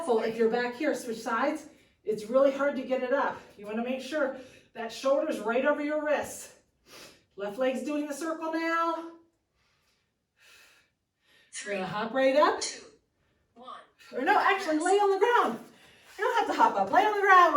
If you're back here, switch sides, it's really hard to get it up. You want to make sure that shoulder's right over your wrists. Left leg's doing the circle now. We're gonna hop right up. 2, 1. Or no, actually lay on the ground. You don't have to hop up. Lay on the ground.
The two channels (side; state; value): both; identical; correlation 1.00